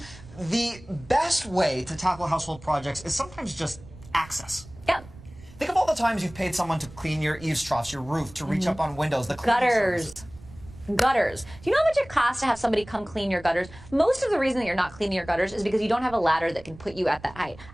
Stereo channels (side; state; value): right; noise; rumble, 19 dB below the sound